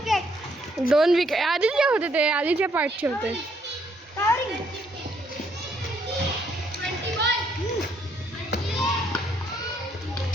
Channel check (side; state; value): both; normal; correlation 0.71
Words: 2 विकेट आधीचे होते. ते आधीच्या पार्टचे होते. 21.